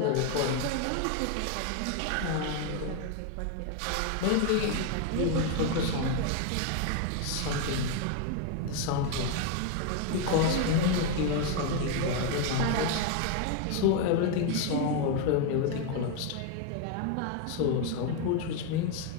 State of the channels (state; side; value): different; both; correlation 0.01